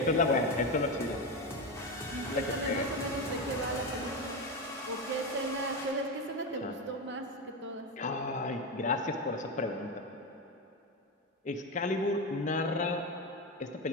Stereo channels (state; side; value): normal; both; correlation 0.14